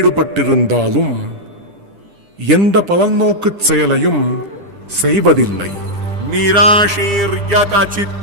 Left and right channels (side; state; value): left; late; 10 ms